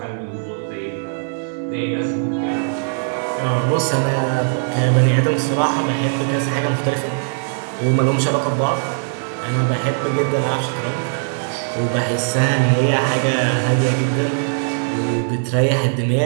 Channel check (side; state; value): left; silent; 64 dB below the other